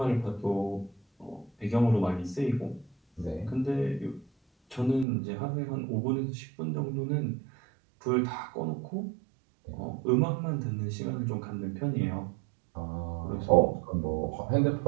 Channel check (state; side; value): drops out; left; at 5.1 s